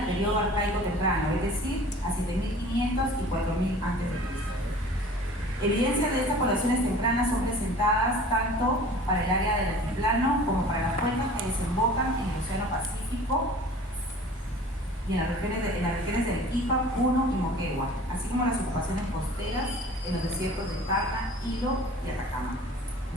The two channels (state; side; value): normal; both; correlation 0.45